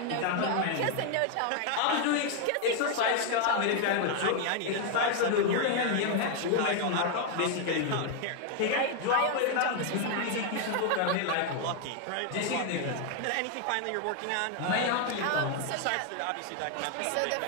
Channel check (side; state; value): both; different; correlation 0.01